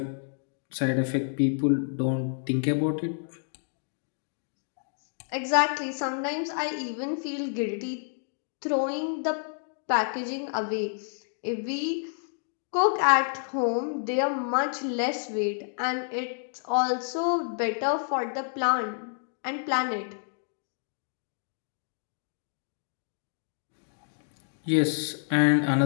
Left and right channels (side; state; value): right; silent; digital silence